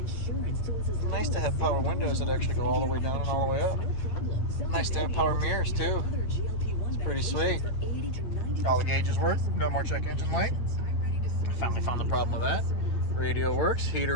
nice to have power windows that actually go all the way down and all the way up. Nice to have power mirrors too. Pretty sweet. All the gauges work. No more check engine light. Finally found the problem with that. Radio works.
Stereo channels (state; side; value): late; right; 8.9 ms